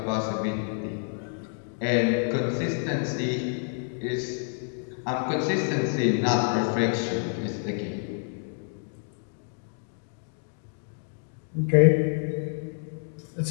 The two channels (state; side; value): silent; right; 57 dB below the other